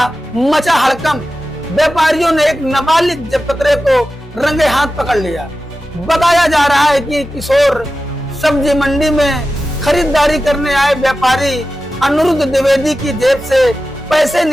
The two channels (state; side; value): normal; both; correlation 0.93